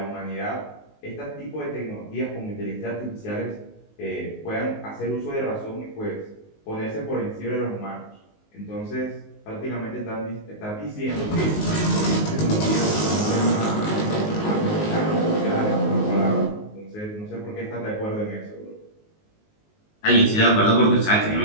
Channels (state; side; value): late; right; 19 ms